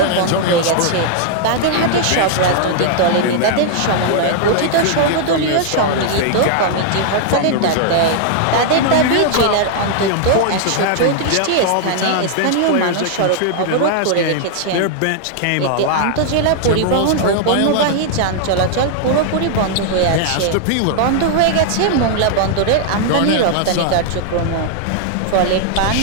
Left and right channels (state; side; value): different; both; correlation -0.01